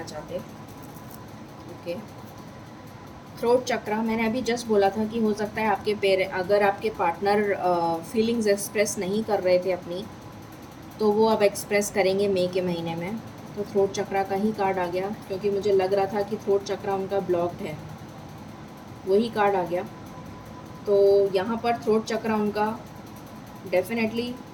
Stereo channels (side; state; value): both; identical; correlation 1.00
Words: चाहते। ओके, थ्रोट चक्रा, मैंने अभी जस्ट बोला था कि हो सकता है आपके अगर आपके पार्टनर फीलिंग्स एक्सप्रेस नहीं कर रहे थे अपनी, तो वो अब एक्सप्रेस करेंगे मई के महीने में। तो थ्रोट चक्रा का ही कार्ड आ गया, क्योंकि मुझे लग रहा था कि थ्रोट चक्रा उनका ब्लॉक्ड है, वही कार्ड आ गया। तो यहाँ पर थ्रोट चक्रा उनका डेफिनेटली